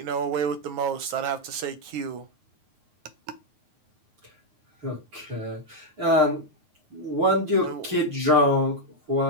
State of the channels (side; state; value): left; late; 9.4 ms